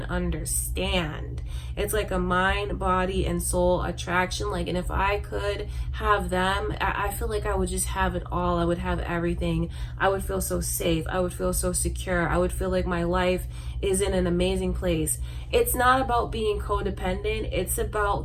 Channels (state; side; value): identical; both; correlation 1.00